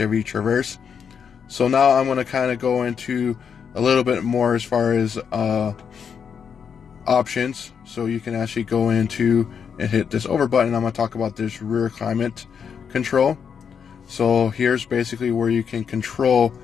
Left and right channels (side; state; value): right; quieter; 7.0 dB